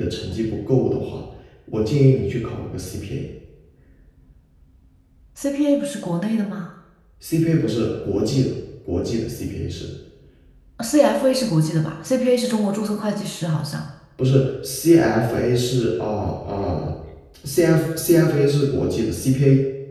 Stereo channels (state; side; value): identical; both; correlation 1.00